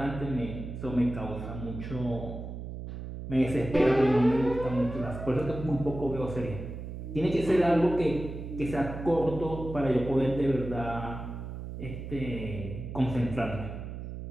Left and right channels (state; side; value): noise; right; hum, 8 dB below the sound